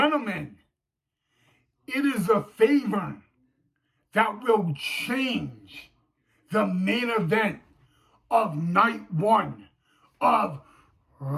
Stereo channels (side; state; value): both; identical; correlation 1.00